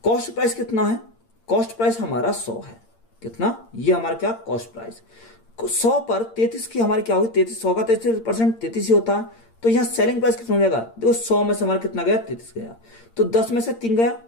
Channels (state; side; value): late; right; 8.7 ms